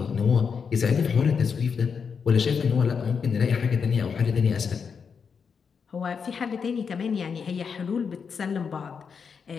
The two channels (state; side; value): quieter; right; 6.1 dB